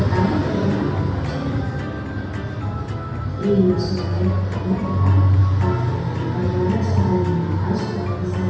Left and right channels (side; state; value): both; identical; correlation 1.00